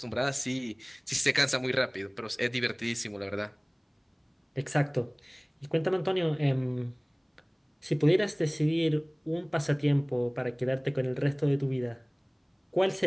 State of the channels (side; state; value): both; identical; correlation 1.00